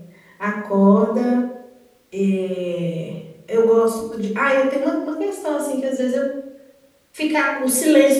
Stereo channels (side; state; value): both; identical; correlation 1.00